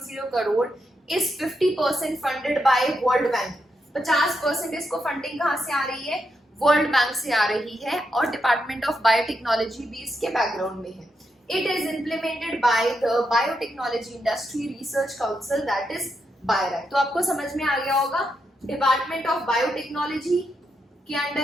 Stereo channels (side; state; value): both; normal; correlation 0.83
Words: करोड़. इस 50% फंडेड बाय वर्ल्ड बैंक. 50% इसको फंडिंग कहाँ से आ रही है? वर्ल्ड बैंक से आ रही है और डिपार्टमेंट ऑफ बायोटेक्नोलॉजी भी इसके बैकग्राउंड में है. It is implemented by the Biotechnology Industry Research Council, that is BIRAC. तो आपको समझ में आ गया होगा डिपार्टमेंट ऑफ बायोटेक्नोलॉजी के